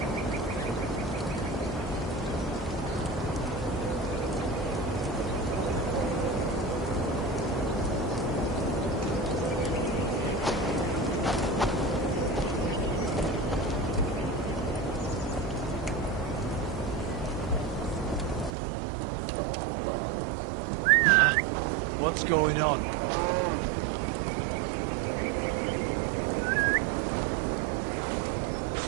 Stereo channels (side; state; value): left; drops out; at 18.5 s